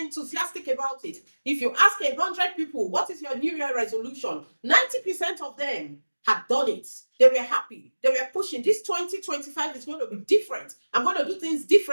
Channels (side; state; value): both; inverted; correlation -1.00